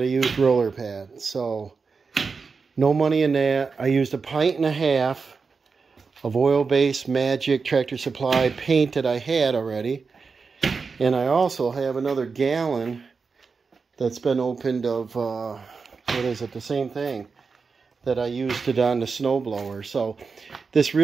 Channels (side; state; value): left; quieter; 4.9 dB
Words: a used roller pad, so no money in that. I used 1.5 pints of oil-based Magic Tractor Supply paint that I had already, and I also have another gallon that's been opened of, what is it, the same thing that I used it on the snowblower. So this